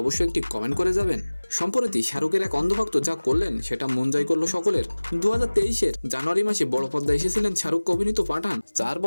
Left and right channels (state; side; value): inverted; both; correlation -1.00